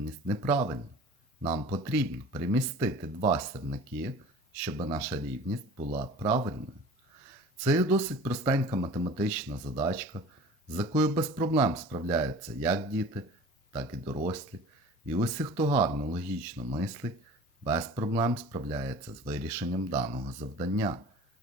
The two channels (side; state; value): both; normal; correlation 0.42